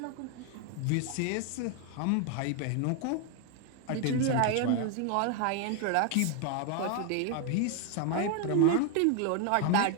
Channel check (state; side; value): different; both; correlation 0.01